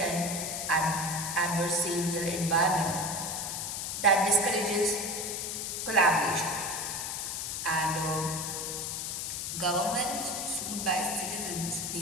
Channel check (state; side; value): noise; left; hiss, 3 dB below the sound